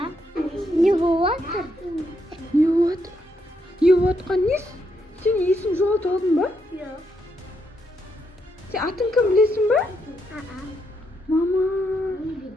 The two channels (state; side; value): normal; both; correlation 0.78